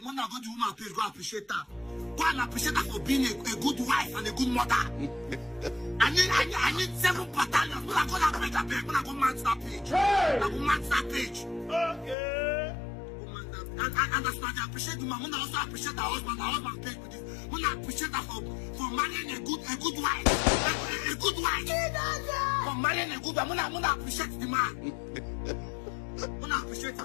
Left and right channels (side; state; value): right; drops out; at 12.2 s